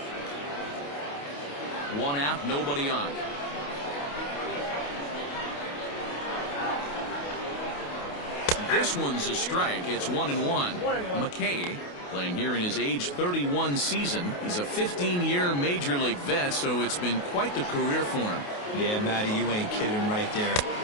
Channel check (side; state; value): right; late; 28 ms